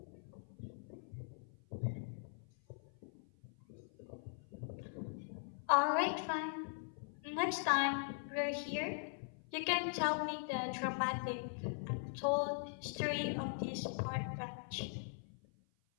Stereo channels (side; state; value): right; silent; 50 dB below the other